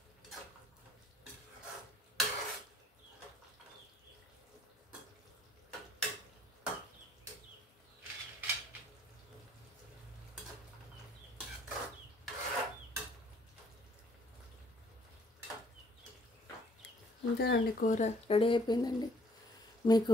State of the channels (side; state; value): both; normal; correlation 0.62